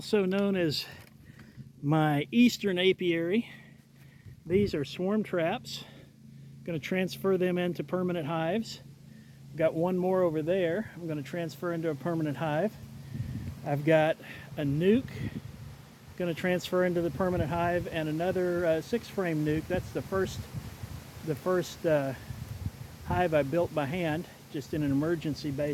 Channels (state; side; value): identical; both; correlation 1.00